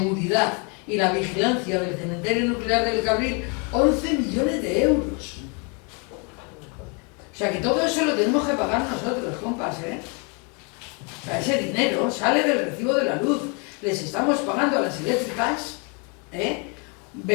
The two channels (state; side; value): quieter; right; 34.1 dB